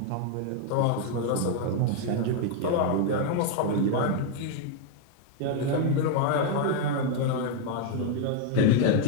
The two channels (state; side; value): different; both; correlation 0.00